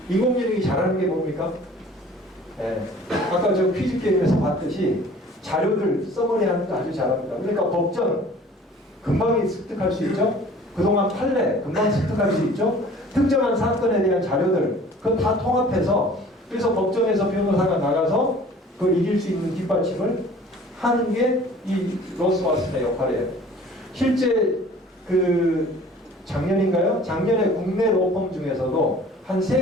인공지능이 잘하는 게 뭡니까? 네. 아까 저 퀴즈 게임에서 봤듯이 자료를 써머리하는 거 아주 잘합니다. 그러니까 법전 금방 습득할 수 있죠. 그동안 판례 금방 습득할 수 있죠. 특정한 사건에 대한 자료들 그거 다 통합해서 그래서 법정에서 변호사가 나가서 그걸 이길 수 있는 뒷받침을 하는 게 이 로스 왓슨의 역할이에요. 실제 그 작년인가요? 작년에 국내 로펌 중에서도 한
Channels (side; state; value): both; normal; correlation 0.49